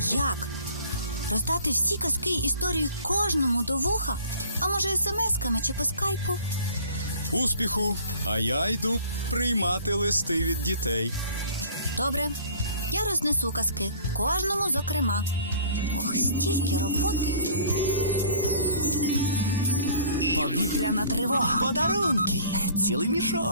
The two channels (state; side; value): inverted; both; correlation -0.50